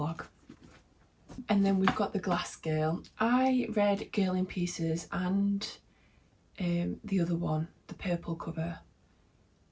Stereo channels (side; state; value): both; identical; correlation 1.00